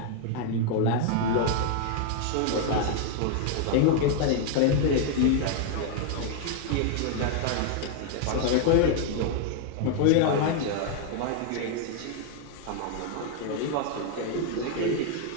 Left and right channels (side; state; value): both; different; correlation 0.00